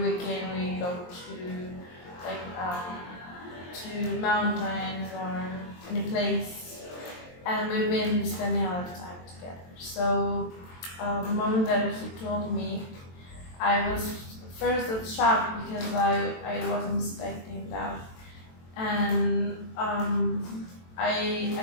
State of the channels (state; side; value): late; right; 23 ms